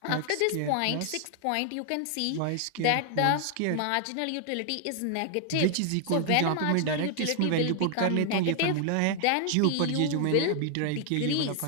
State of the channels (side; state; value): both; different; correlation 0.00